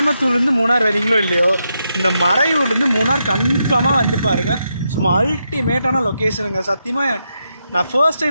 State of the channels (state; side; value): inverted; both; correlation -0.83